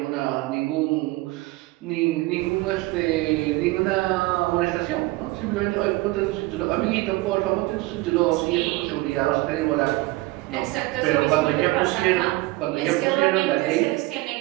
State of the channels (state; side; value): quieter; left; 20.5 dB